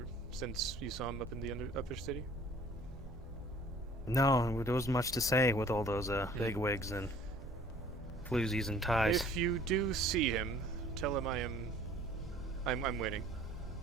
since you saw him up in the upper city. No, there wasn't much to say with all those bigwigs and floozies and ties. If you do see him, tell him I'm waiting.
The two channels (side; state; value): both; normal; correlation 0.53